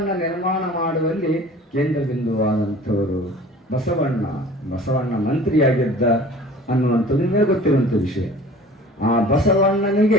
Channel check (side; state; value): both; normal; correlation 0.45